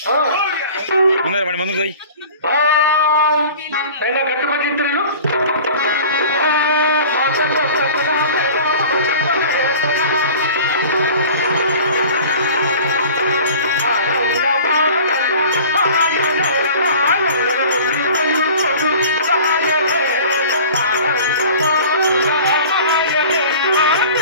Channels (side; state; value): both; inverted; correlation -0.43